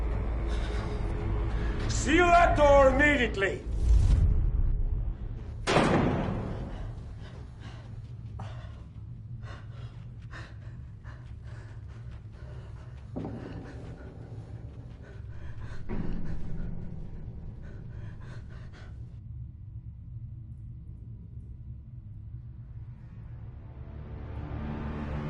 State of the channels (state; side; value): identical; both; correlation 1.00